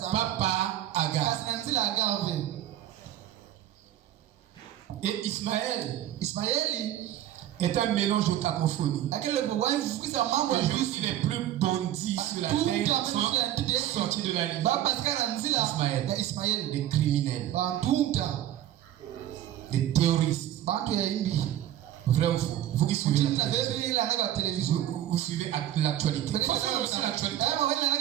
Pas par Agar. Et Ismaël est un mélange de cacophonie. Les juifs les plus bandits sur la terre sont sortis de la ligne. Ismaël, des criminels, des terroristes. Vrai ou faux? Vous qui suivez la télévision, vous suivez l'actualité.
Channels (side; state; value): left; quieter; 12.4 dB